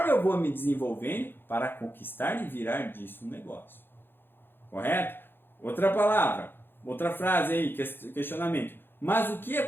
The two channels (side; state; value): right; late; 0.10 ms